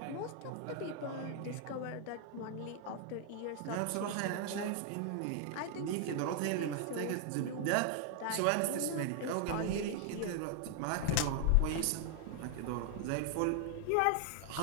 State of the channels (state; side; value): different; both; correlation 0.00